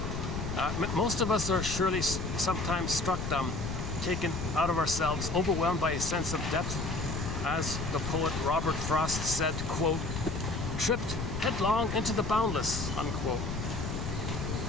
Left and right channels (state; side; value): noise; left; rumble, 4 dB below the sound